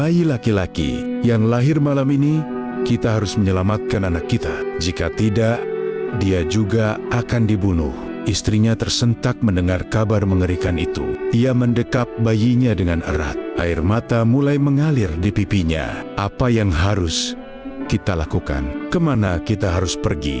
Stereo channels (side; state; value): both; identical; correlation 1.00